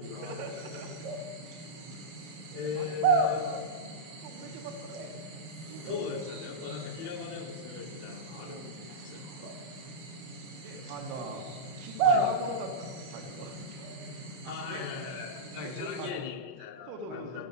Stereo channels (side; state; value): left; late; 32 ms